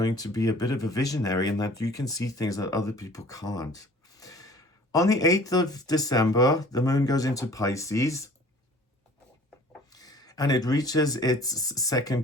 to be a bit of a visionary and that you can see things that other people can't. On the 8th of December, the moon goes into Pisces and it reaches its second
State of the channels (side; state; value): both; normal; correlation 0.49